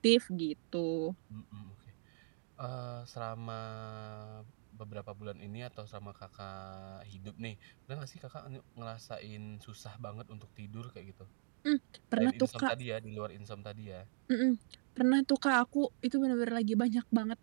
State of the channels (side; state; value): left; silent; digital silence